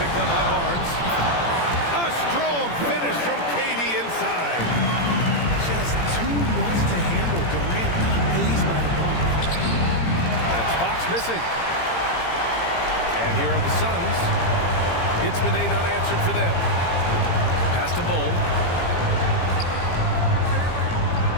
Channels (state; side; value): late; right; 17 ms